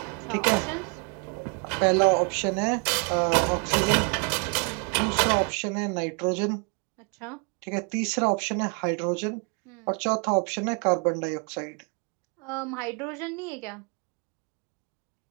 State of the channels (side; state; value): left; quieter; 34.8 dB